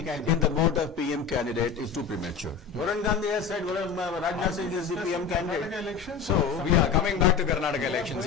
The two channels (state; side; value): quieter; right; 6.1 dB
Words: in the mode of PM candidate is too premature. Varun Gandhi has said Rajnath Singh is the PM candidate. Elections. So we are coming back to Karnataka elections.